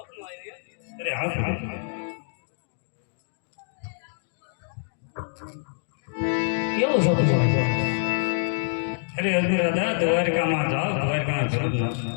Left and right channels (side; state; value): right; silent; digital silence